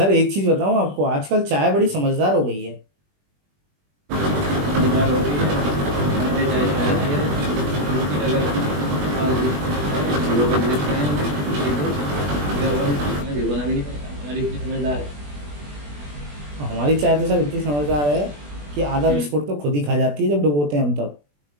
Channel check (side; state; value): left; late; 20 ms